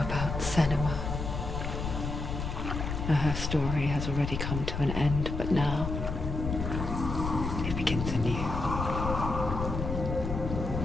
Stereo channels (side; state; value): left; noise; rumble, 4 dB below the sound